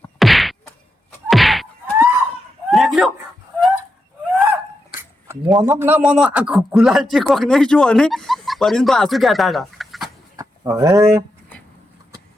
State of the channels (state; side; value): normal; both; correlation 0.86